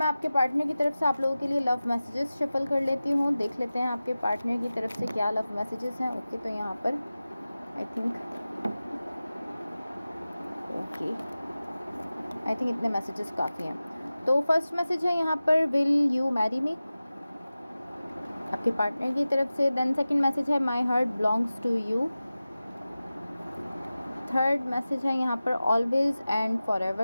आपके पार्टनर की तरफ से आप लोगों के लिए लव मैसेजेस शफल कर लेती हूँ, देख लेते हैं आपके पार्टनर की तरफ से क्या लव मैसेजेस हैं। ओके, तो यहाँ पर आई थिंक इतने मैसेजेस काफ़ी हैं। तो फर्स्ट मैसेज है यहाँ पर, विल यू मैरी मी, आपके पार्टनर की तरफ से। देन सेकंड मैसेज है, my heart belongs to you. Third message है यहाँ पर, ऑलवेज एंड फॉर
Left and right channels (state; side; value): inverted; both; correlation -0.96